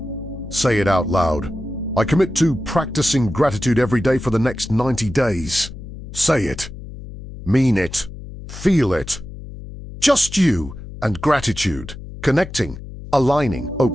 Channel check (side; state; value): left; noise; hum, 12 dB below the sound